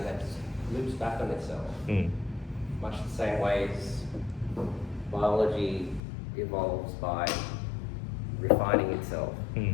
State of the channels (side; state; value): right; drops out; at 6.0 s